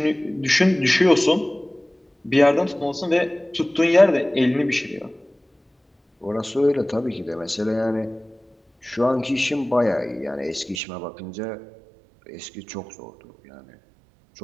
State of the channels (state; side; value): drops out; left; at 10.8 s